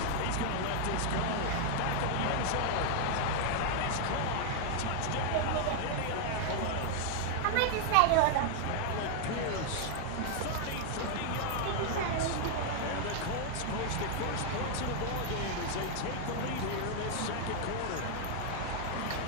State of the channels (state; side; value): different; both; correlation 0.00